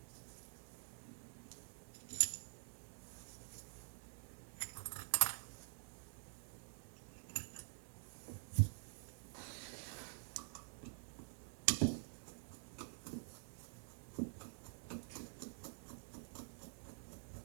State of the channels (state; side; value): silent; left; digital silence